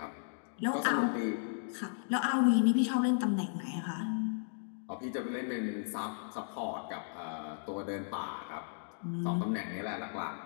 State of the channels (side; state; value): right; silent; digital silence